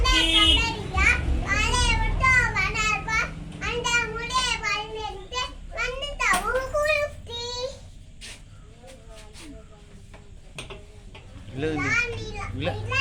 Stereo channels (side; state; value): both; identical; correlation 1.00